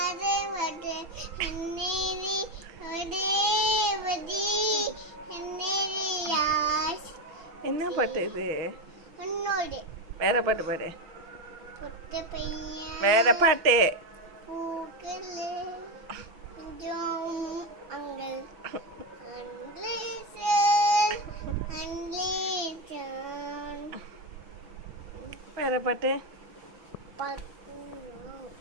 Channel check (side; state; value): left; late; 6.0 ms